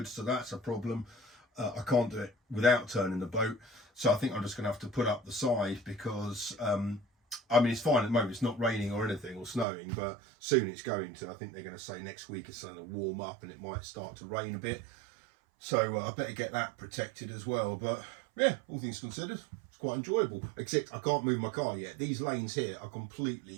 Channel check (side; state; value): left; drops out; at 9.7 s